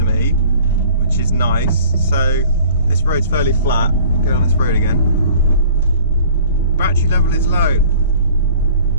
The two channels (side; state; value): both; inverted; correlation -0.50